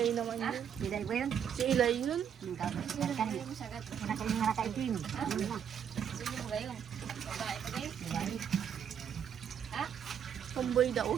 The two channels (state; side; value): quieter; left; 8.5 dB